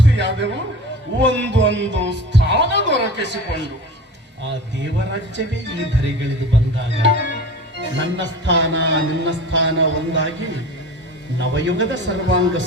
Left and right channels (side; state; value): both; normal; correlation 0.35